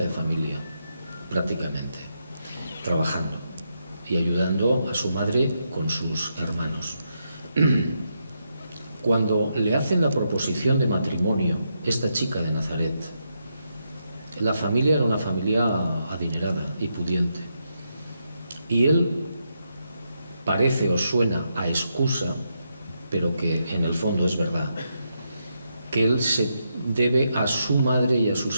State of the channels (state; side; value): inverted; both; correlation -0.82